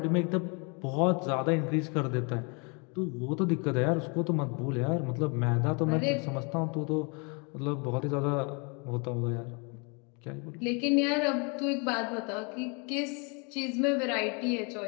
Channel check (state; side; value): quieter; right; 33.6 dB